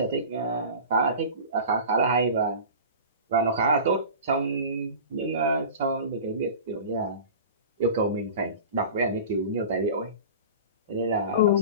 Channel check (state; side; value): inverted; both; correlation -0.36